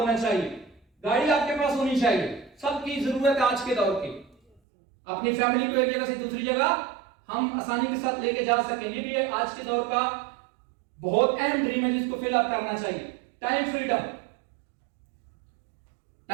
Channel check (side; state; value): left; drops out; at 4.6 s